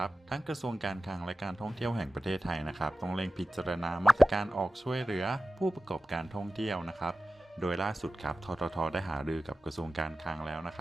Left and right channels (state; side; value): normal; both; correlation 0.95